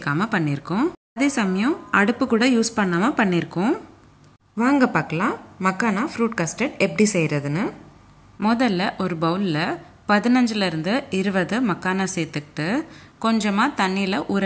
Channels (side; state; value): both; identical; correlation 1.00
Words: பண்ணியிருக்கோம். அதே சமயம் அடுப்பு கூட யூஸ் பண்ணாமல் பண்ணியிருக்கோம். வாங்க பார்க்கலாம் மக்கானா ஃப்ரூட் கஸ்டர்ட் எப்படி செய்கிறதுன்னு. முதல்ல ஒரு பவுலில் 15லேருந்து 20 மக்கானா சேர்த்துக்கிட்டு கொஞ்சமாக தண்ணியில் ஊற